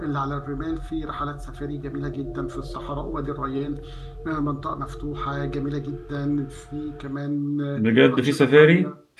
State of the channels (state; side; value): identical; both; correlation 1.00